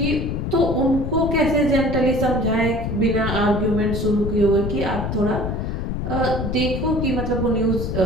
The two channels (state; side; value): noise; left; rumble, 3 dB below the sound